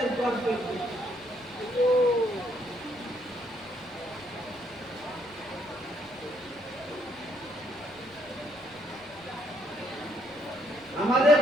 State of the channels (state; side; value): noise; left; rumble, 26 dB below the sound